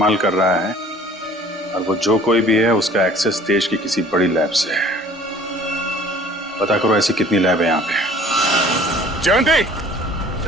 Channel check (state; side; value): normal; both; correlation 0.51